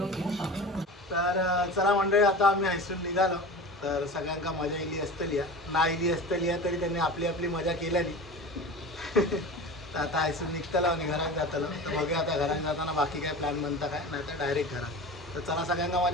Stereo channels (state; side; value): normal; both; correlation 0.33